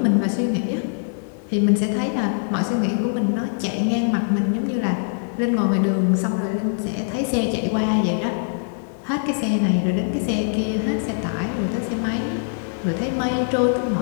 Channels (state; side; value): silent; right; digital silence